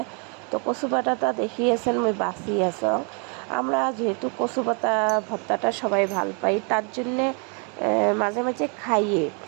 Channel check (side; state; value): left; quieter; 36.8 dB